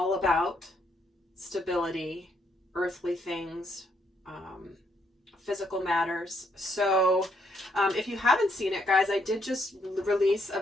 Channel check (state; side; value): normal; both; correlation 0.73